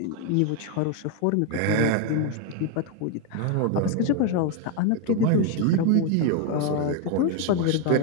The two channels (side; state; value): both; different; correlation 0.01